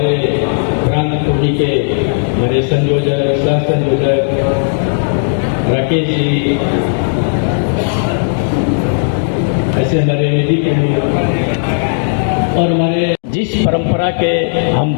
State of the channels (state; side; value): silent; right; digital silence